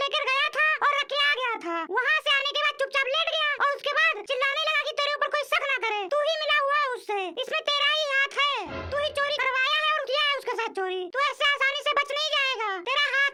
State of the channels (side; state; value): both; identical; correlation 1.00